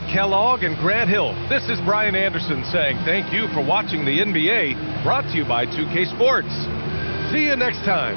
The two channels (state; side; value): inverted; both; correlation -1.00